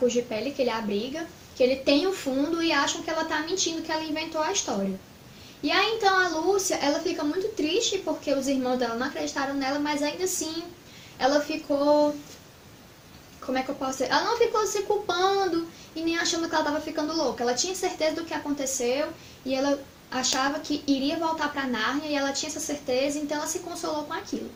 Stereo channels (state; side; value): identical; both; correlation 1.00